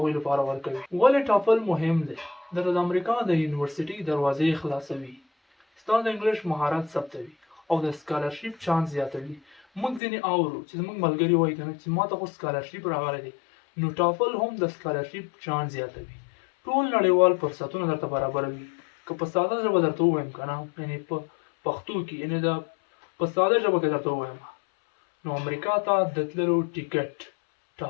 لپاره ورکوي. ولې ټافل مهم دی؟ د امریکا د یونیورسيټي دروازې خلاصوي، ستا د انګلیش مهارت ثبتوي او د سکالرشپ چانس زیاتوي. موږ ځینې اورو چې زموږ ملګري وایي که نه چې ما ته خو سکالرشپ راغلی دی، نو ټافل هم د سکالرشپ چانس زیاتوي. ټول نړیوال فرصتونه درته برابروي. که په ساده ژبه درته ووایم که نه، یعنې په پښتو کې، یعنې په ساده ژبه کې درته ووایم، نو امریکا ته د تللو ټیکټ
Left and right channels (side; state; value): right; drops out; at 10.0 s